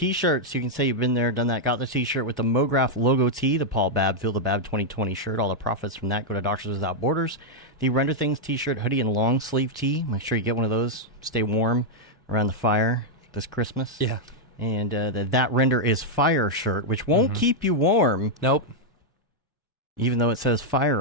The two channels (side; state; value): both; normal; correlation -0.02